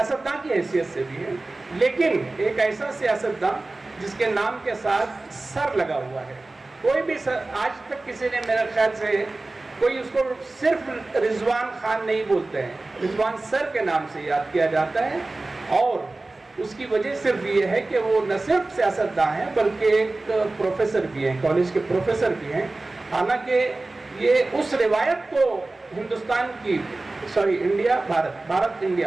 की हैसियत से भी है, लेकिन एक ऐसा सियासतदान जिसके नाम के साथ सर लगा हुआ है। कोई भी आज तक किसी ने मेरे ख्याल से कोई उसको सिर्फ रिजवान खान नहीं बोलते हैं, रिजवान सर के नाम से याद किया जाता है। और उसकी वजह सिर्फ ये है कि वो न सिर्फ सियासतदान हैं बल्कि एक प्रोफेसर भी हैं, कॉलेज के प्रोफेसर भी हैं। हालांकि ये उस रिवायत को हिंदुस्तान की इंडिया भारत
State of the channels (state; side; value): quieter; left; 3.1 dB